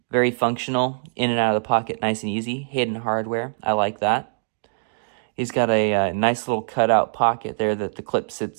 Very functional, in and out of the pocket, nice and easy. Hidden hardware, I like that. He's got a nice little cutout pocket there that the clip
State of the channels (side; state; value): left; silent; digital silence